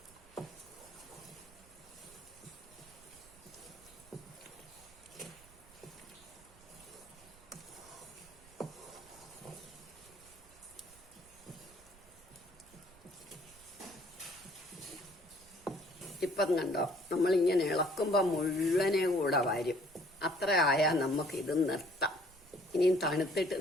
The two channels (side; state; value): right; noise; rumble, 25 dB below the sound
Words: ഇപ്പം കണ്ടോ, നമ്മളിങ്ങനെ ഇളക്കുമ്പോൾ മുഴുവനെ കൂടെ വരും. അത്ര ആയാൽ നമുക്കിത് നിർത്താം. ഇനിയും തണുത്തിട്ട്